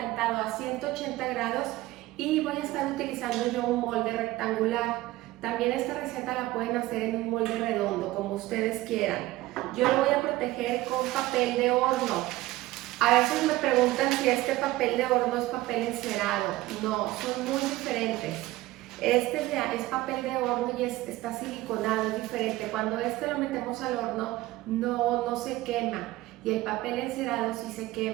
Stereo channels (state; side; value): quieter; left; 17.7 dB